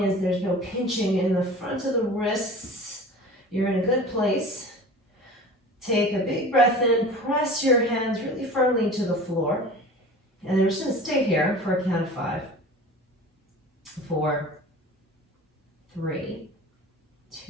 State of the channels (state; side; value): normal; both; correlation 0.39